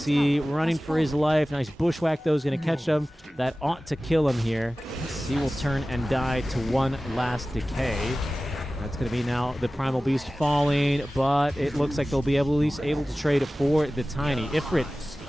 running for his life. Nice bushwhack, though, is going to catch him. That ought to kill him here. He will turn and die to one last decay. That's going to be now the Primal Beast falling, but it looks like they'll be at least able to trade for the Tiny. Ifrit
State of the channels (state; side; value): normal; both; correlation 0.96